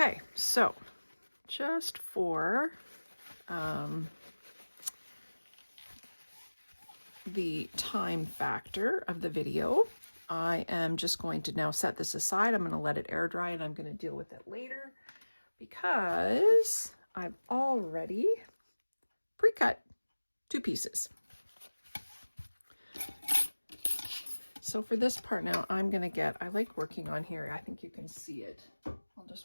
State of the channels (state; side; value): inverted; both; correlation -1.00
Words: so just for the time factor of the video, I am just going to now set this aside. I'm going to let it air dry and I'm going to deal with it later because I've already pre-cut 2 pieces. So for this part now, I'm going to get, I like working on here. I think you can see it. I'll